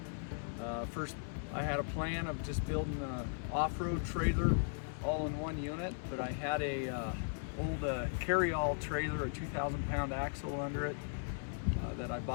first I had a plan of just building an off-road trailer all in one unit, but I had a old carry-all trailer, a 2,000-pound axle under it that I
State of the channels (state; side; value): silent; right; 53 dB below the other